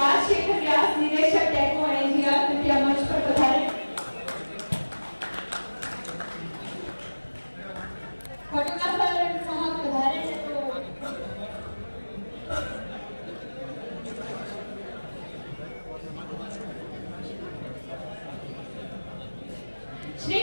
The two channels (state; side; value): inverted; both; correlation -1.00